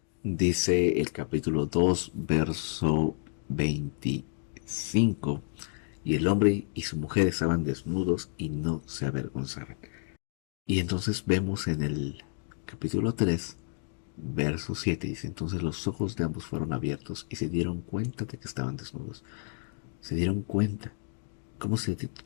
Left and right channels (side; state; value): right; silent; 57 dB below the other